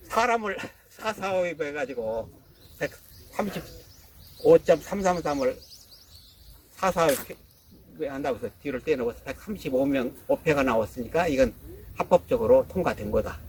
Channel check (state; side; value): identical; both; correlation 1.00